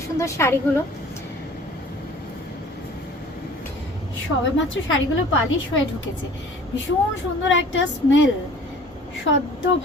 সুন্দর শাড়িগুলো। সবে মাত্র শাড়িগুলো পালিশ হয়ে ঢুকেছে, ভীষণ সুন্দর একটা স্মেল, সদ্য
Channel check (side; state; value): both; normal; correlation 0.48